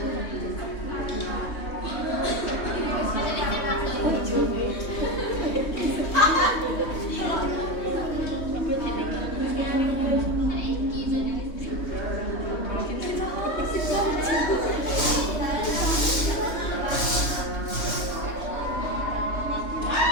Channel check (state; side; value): late; right; 3.2 ms